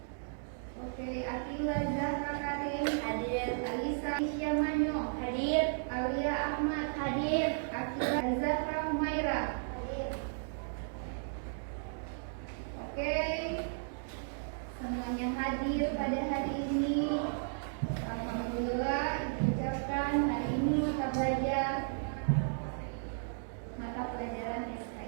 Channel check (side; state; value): left; silent; digital silence